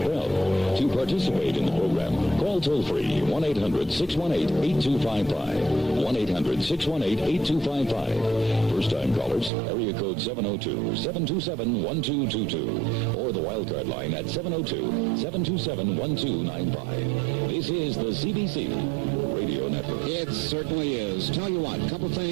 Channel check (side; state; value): left; drops out; at 9.5 s